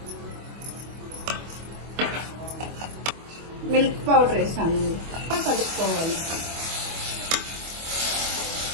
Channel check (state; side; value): late; left; 25 ms